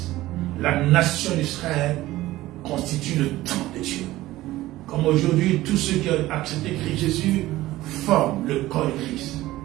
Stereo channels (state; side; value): quieter; left; 16.6 dB